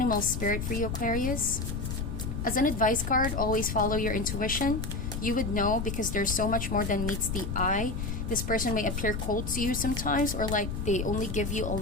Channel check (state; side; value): noise; left; rumble, 4 dB below the sound